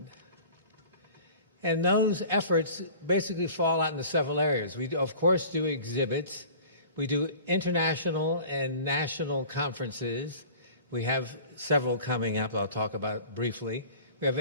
And those efforts basically fall out into several areas. We, of course, do exhibits. We do international and national conferences. We have several coming up I'll talk about briefly. We have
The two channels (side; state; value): both; inverted; correlation -0.44